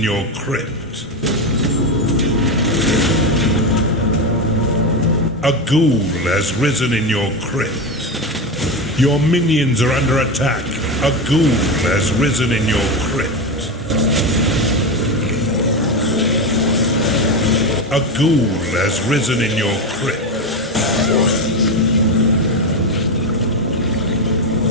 your crypt. A ghoul has risen in your crypt. Your minions are under attack. A ghoul has risen in your crypt. A ghoul has risen in your crypt.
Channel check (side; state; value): both; normal; correlation 0.15